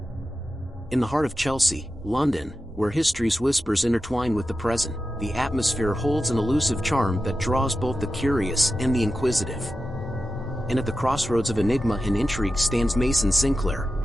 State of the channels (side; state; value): both; normal; correlation 0.91